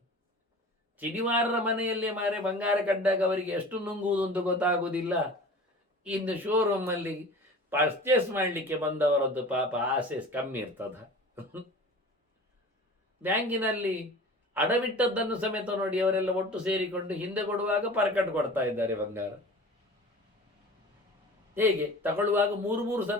ಚಿನಿವಾರರ ಮನೆಯಲ್ಲೇ ಮಾರೆ ಬಂಗಾರ ಕಂಡಾಗ ಅವರಿಗೆ ಎಷ್ಟು ನುಂಗುವುದು ಅಂತ ಗೊತ್ತಾಗುವುದಿಲ್ಲ. ಇನ್ನು ಶೋರೂಮಲ್ಲಿ ಪರ್ಚೇಸ್ ಮಾಡಲಿಕ್ಕೆ ಬಂದವರದ್ದು ಪಾಪ ಆಸೆ ಕಮ್ಮಿ ಇರ್ತದ. ಬ್ಯಾಂಕಿನಲ್ಲಿ ಅಡವಿಟ್ಟದ್ದನ್ನು ಸಮೇತ ನೋಡಿ ಅವರೆಲ್ಲ ಒಟ್ಟು ಸೇರಿಕೊಂಡು ಹಿಂದೆ ಕೊಡುವಾಗ ಪರ್ಕಟ್ ಕೊಡ್ತಾ ಇದ್ದಾರೆ ಬಂಗಾರ. ಹೇಗೆ ತಗೊಳ್ಳುವಾಗ ಮೂರು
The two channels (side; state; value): both; normal; correlation 0.40